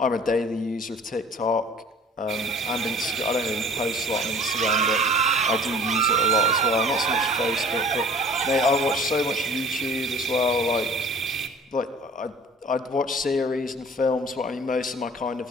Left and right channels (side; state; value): both; normal; correlation 0.47